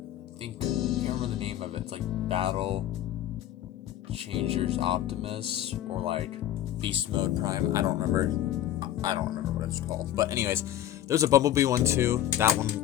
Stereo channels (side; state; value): right; quieter; 12.0 dB